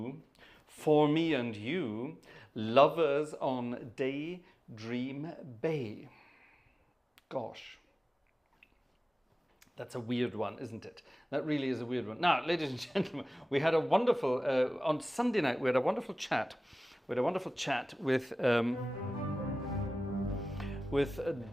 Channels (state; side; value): normal; both; correlation 0.97